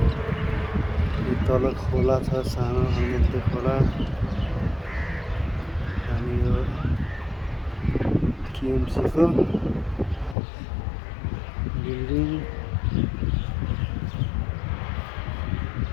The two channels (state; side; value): drops out; right; at 10.4 s